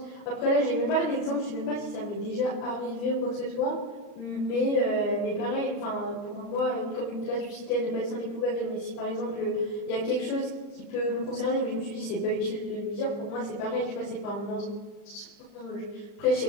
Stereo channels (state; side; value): late; right; 40 ms